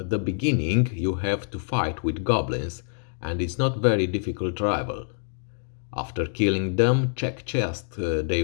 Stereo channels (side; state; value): right; silent; digital silence